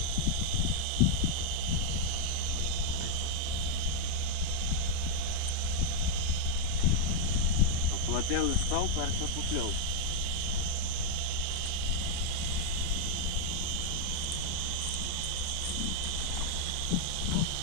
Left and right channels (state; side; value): different; both; correlation 0.00